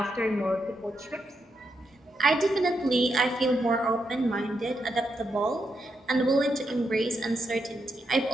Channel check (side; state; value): both; normal; correlation 0.82